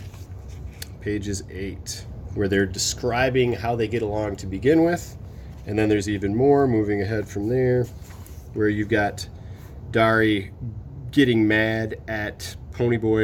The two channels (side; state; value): both; identical; correlation 1.00